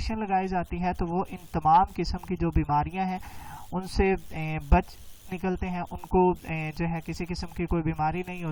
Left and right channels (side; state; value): both; identical; correlation 1.00